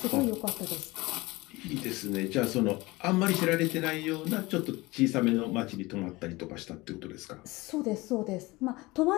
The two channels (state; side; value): quieter; right; 21.7 dB